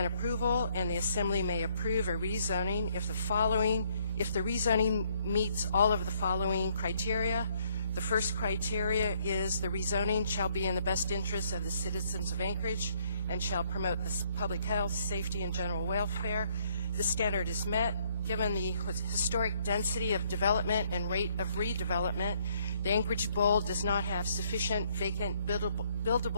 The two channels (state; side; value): inverted; both; correlation -0.67